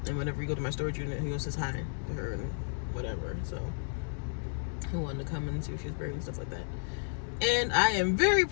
and whenever you go to my storage unit, he goes says hi to her and whatever. So he wanted to come and see if she was buried and stuff like that. And I am very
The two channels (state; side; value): silent; right; digital silence